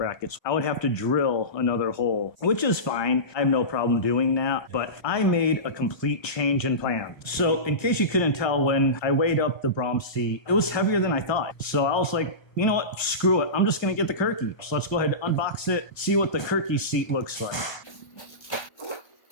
I would have to drill another hole, which is fine. I have no problem doing that, but I made a complete change in plan. So in case you couldn't tell, when I weighed up the Braum seat, it was heavier than I thought. So I was like, you know what, screw it. I'm just gonna get the Kirkey. So let's go ahead and unbox it, see what the Kirkey seat looks like.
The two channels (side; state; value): right; late; 1.3 ms